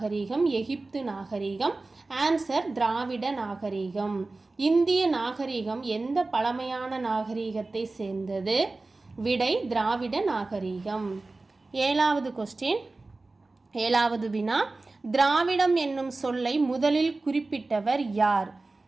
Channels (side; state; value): left; quieter; 3.3 dB